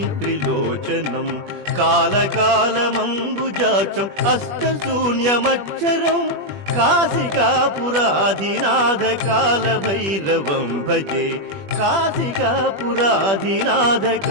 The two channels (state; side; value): late; left; 21 ms